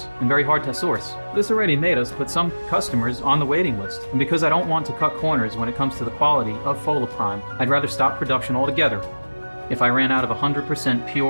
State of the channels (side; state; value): both; inverted; correlation -1.00